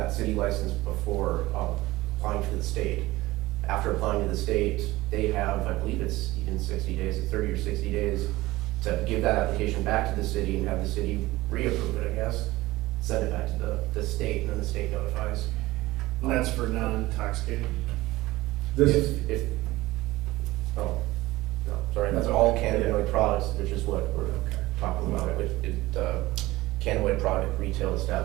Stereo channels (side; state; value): left; quieter; 18.7 dB